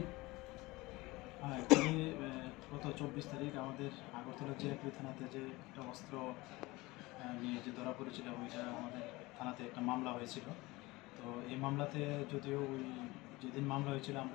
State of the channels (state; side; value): quieter; right; 21.5 dB